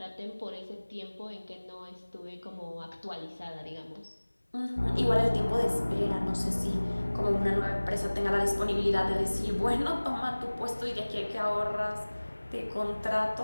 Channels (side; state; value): both; inverted; correlation -1.00